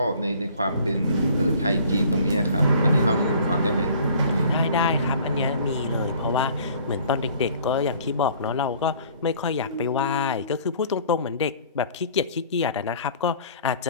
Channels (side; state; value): both; inverted; correlation -0.52